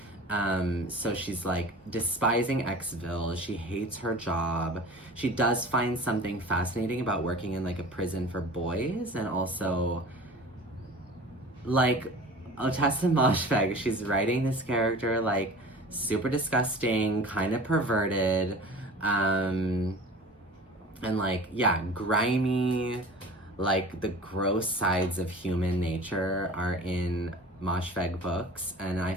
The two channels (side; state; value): both; normal; correlation 0.40